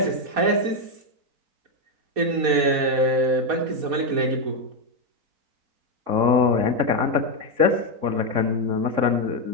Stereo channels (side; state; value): left; late; 4.2 ms